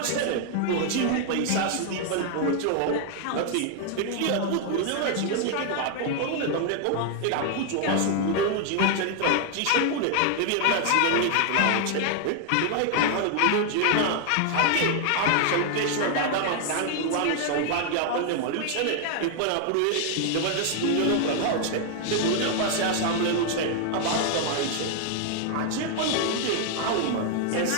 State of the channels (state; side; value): different; both; correlation 0.00